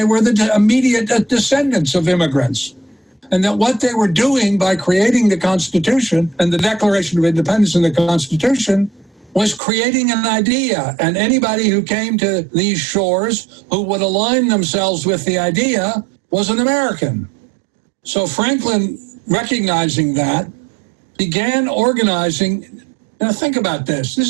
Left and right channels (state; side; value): drops out; left; at 9.6 s